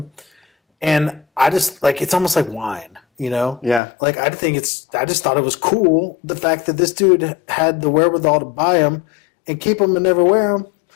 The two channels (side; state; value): right; drops out; at 3.8 s